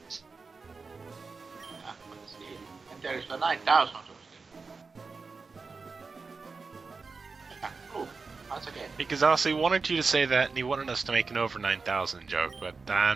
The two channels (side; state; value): left; quieter; 4.4 dB